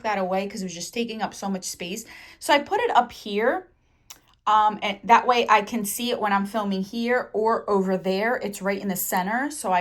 that away because it was just taking up so much space. So I put it up here. And that way I can see it when I'm filming here or over there. It's right in the center, so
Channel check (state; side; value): identical; both; correlation 1.00